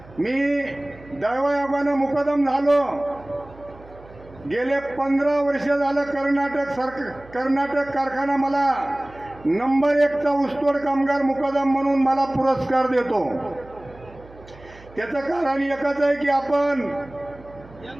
मी दैवयोगानं मुकदम झालो. गेले 15 वर्ष झालं कर्नाटक कारखाना मला नंबर 1चा ऊसतोड कामगार मुकदम म्हणून मला पुरस्कार देतो. त्याचं कारण एकच आहे की आपण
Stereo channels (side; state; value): right; noise; hum, 22 dB below the sound